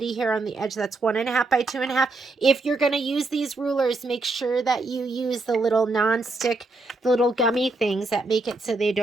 here on the edge. That's 1.5 by 2.5. If you're going to use these rulers, make sure that you use the little non-stick, the little gummy things that make it so they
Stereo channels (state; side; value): quieter; left; 3.3 dB